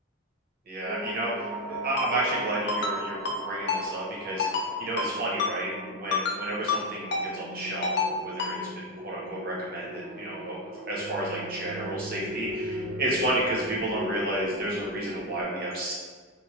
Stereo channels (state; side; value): normal; both; correlation 0.07